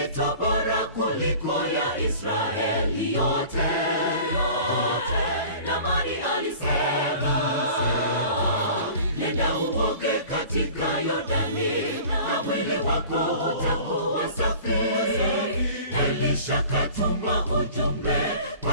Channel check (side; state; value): both; inverted; correlation -0.43